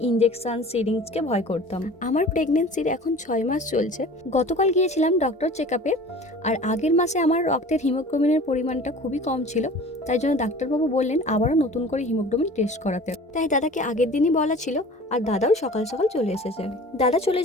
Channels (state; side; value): normal; both; correlation 0.42